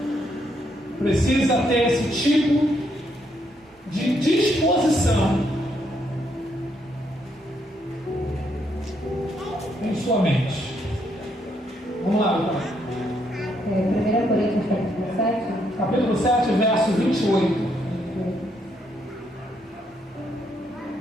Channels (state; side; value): normal; both; correlation 0.74